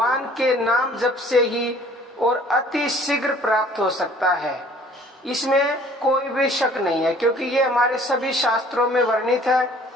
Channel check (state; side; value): normal; both; correlation 0.54